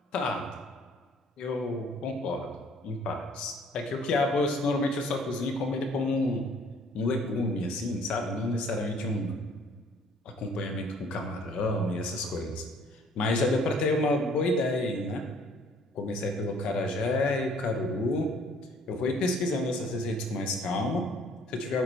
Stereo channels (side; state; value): both; normal; correlation 0.58